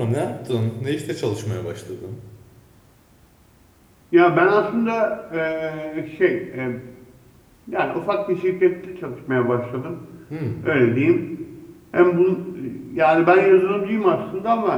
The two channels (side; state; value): both; identical; correlation 1.00